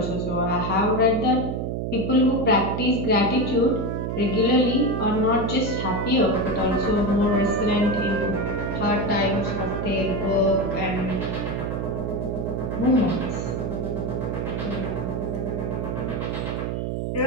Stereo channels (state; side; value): noise; right; hum, 2 dB below the sound